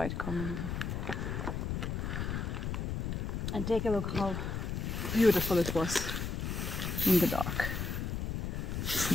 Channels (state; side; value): noise; left; rumble, 2 dB below the sound